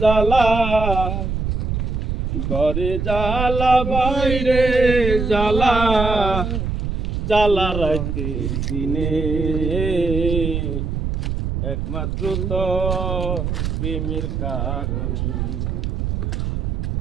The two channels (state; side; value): noise; right; rumble, 2 dB below the sound